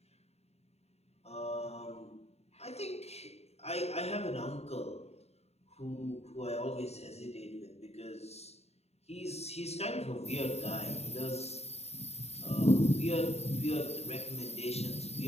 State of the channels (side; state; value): right; late; 0.31 ms